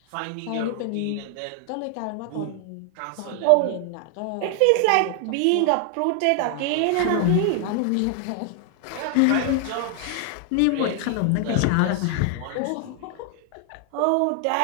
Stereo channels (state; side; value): different; both; correlation 0.00